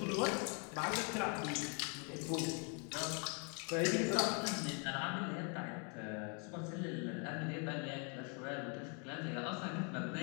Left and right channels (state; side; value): quieter; right; 36.9 dB